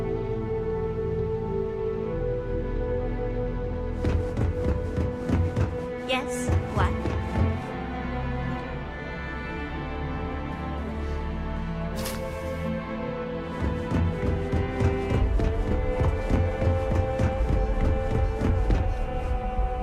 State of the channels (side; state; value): both; identical; correlation 1.00